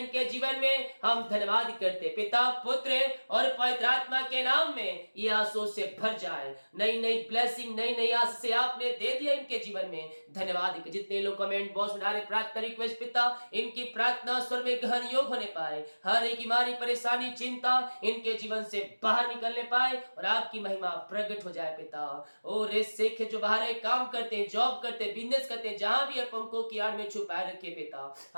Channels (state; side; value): inverted; both; correlation -1.00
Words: जीवन में, हम धन्यवाद करते पिता पुत्र और पवित्र आत्मा के नाम में ये आंसू से भर जाए, नई नई ब्लेसिंग, नई नई आशीषें आपने दे दिया इनके जीवन में, धन्यवाद। जितने लोग कमेंट बॉक्स में डाले प्रार्थना रिक्वेस्ट पिता, इनकी प्रार्थना स्वर में गहन योग होने पाए, हर एक बीमारी परेशानी चिंता इनके जीवन से बाहर निकलने पाए, और आपकी महिमा प्रकट हो जाए पिता। और इस सिख जो बाहर काम करते हैं, जॉब करते हैं, बिजनेस करते हैं, जहां भी अपन को पंखों की आड़ में छुपाए रखे पिता।